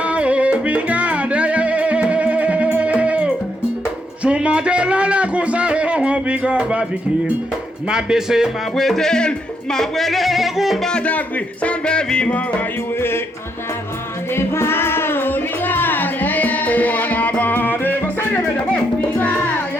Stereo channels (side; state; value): both; normal; correlation 0.76